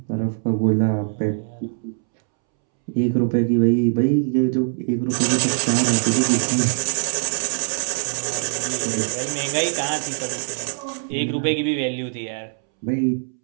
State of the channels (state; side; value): silent; left; 64 dB below the other